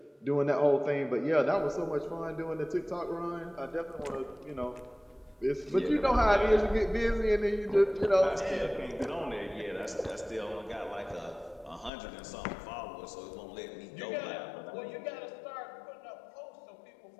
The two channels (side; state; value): right; drops out; at 11.9 s